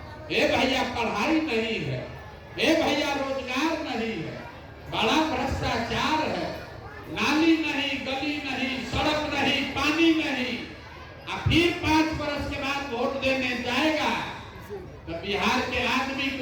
हे भैया पढ़ाई नहीं है, हे भैया रोजगार नहीं है, बड़ा भ्रष्टाचार है, नाली नहीं, गली नहीं, सड़क नहीं, पानी नहीं। अब फिर 5 बरस के बाद वोट देने जाएगा तो बिहार के आदमी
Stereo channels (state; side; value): identical; both; correlation 1.00